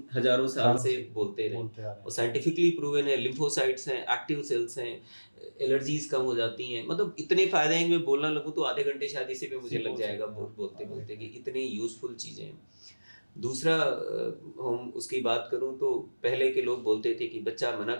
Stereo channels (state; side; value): inverted; both; correlation -1.00